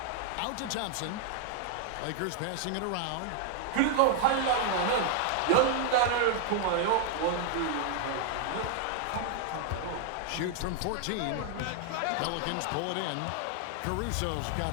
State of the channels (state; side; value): different; both; correlation 0.00